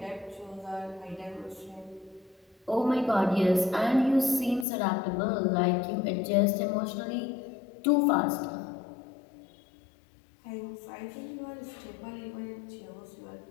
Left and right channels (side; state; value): right; drops out; at 4.7 s